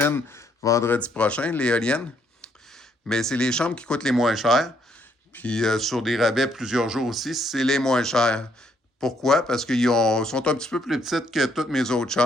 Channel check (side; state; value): both; normal; correlation 0.71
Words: vendredi prochain, l'éolienne. Mais c'est les chambres qui coûtent les moins chères. Puis sur des rabais plusieurs jours aussi, c'est les moins chers. Pourquoi? Parce qu'ils sont un petit peu plus petites que toutes mes autres